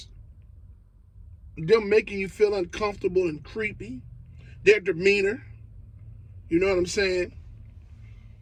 them making you feel uncomfortable and creepy, their demeanor, you know what I'm saying?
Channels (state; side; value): identical; both; correlation 1.00